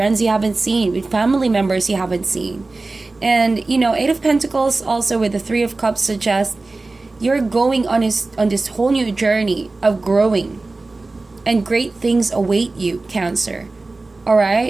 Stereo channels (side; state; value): left; quieter; 3.4 dB